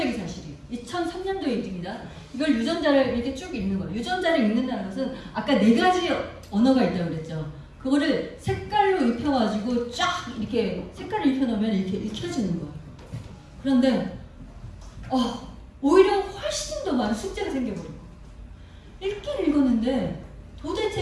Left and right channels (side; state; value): both; identical; correlation 1.00